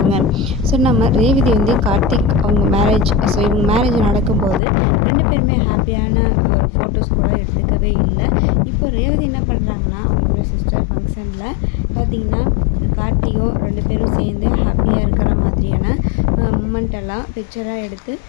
ஸோ நம்ம ரேவதி கார்த்திக் அவங்க மேரேஜ் இவங்க மேரேஜ் நடக்கும்போது 2 பேருமே ஹாப்பியான ஒரு ஃபோட்டோஸ் கூட எடுத்துக்கவே இல்லை. இப்போ ரேவதி என்ன பண்ணுறாங்கன்னா அவங்களோட சிஸ்டர் ஃபங்க்ஷனில் பார்த்திங்கன்னா கார்த்திகோ 2 பேரும் சேர்ந்து ஹாப்பியாக இருக்கிற மாதிரியான மூமெண்ட் எல்லாம் பிக்சராக எடுத்து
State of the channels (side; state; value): right; drops out; at 4.6 s